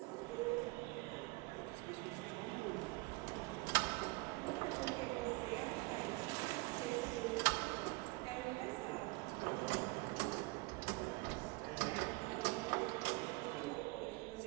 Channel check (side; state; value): left; quieter; 24.9 dB